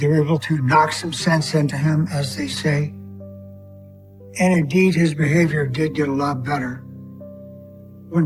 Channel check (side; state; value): both; identical; correlation 1.00